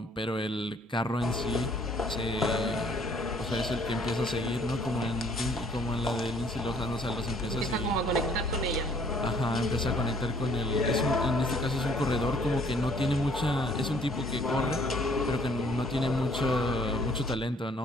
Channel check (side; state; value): both; normal; correlation 0.60